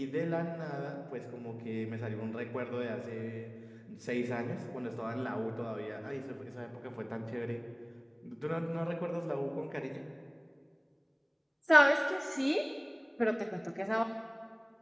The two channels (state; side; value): identical; both; correlation 1.00